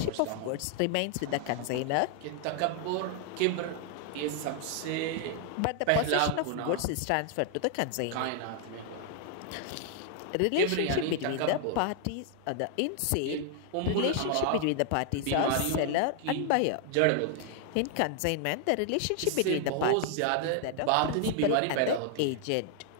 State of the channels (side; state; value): both; different; correlation 0.00